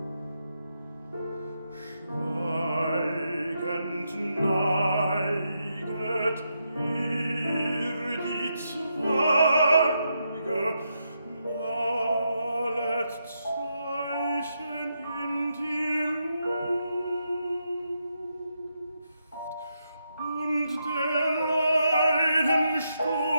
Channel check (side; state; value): both; inverted; correlation -0.82